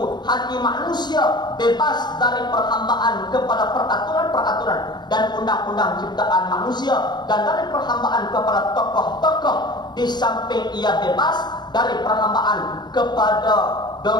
hati manusia bebas dari perhambaan kepada peraturan-peraturan dan undang-undang ciptaan manusia, dan dari perhambaan kepada tokoh-tokoh, di samping ia bebas dari perhambaan kepada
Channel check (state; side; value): late; right; 0.21 ms